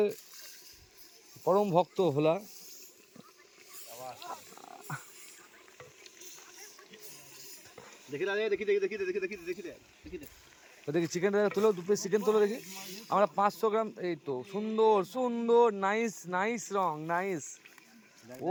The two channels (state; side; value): identical; both; correlation 1.00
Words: পরম ভক্ত ভোলা। দেখি চিকেনটা তুলো, 2 পিস চিকেন তুলো দেখি। আমরা 500 গ্রাম, এই তো সুন্দর সুন্দর, নাইস নাইস রং, নাইস।